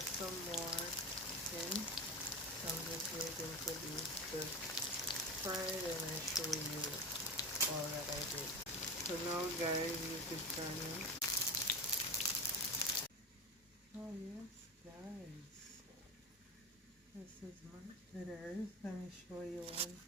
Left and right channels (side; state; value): both; normal; correlation 0.24